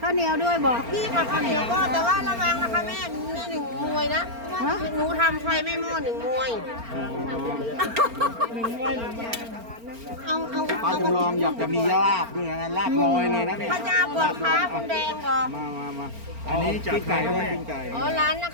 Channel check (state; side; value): late; left; 4.4 ms